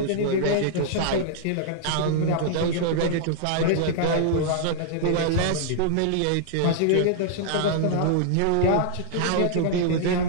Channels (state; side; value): different; both; correlation -0.01